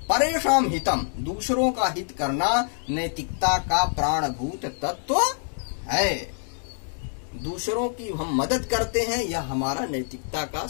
परेषां हितम, दूसरों का हित करना नैतिकता का प्राणभूत तत्व है। दूसरों की हम मदद करते हैं, यह हमारा नैतिकता का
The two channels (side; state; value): right; silent; digital silence